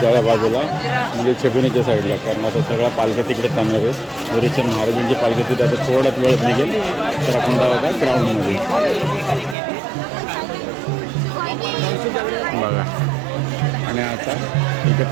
जाळ्या बाजूला म्हणजे छबिनीच्या साईडला, कारण आता सगळा पालख्या तिकडे थांबणार आहे. हरिचंद महाराजांची पालखी तिथे आता थोड्याच वेळात निघेल, तर आपण जाऊ का ग्राउंडमध्ये बघा. आणि आता इथे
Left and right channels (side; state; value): left; drops out; at 9.6 s